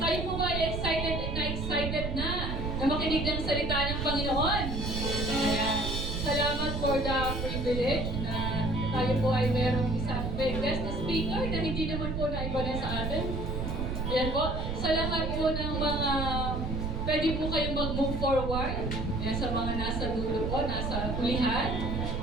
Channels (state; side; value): noise; right; rumble, 2 dB below the sound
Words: Tayo po ba ay excited na makinig ng salita ng Panginoon. Ayan. Salamat for the privilege na tayo po ay merong isang guest speaker na hindi naman po naiba na sa atin. Ayan po. Salamat po ng mga pwede po kayong mag-move forward. Ayan, sa mga nasa dulo po, nasa hulihan.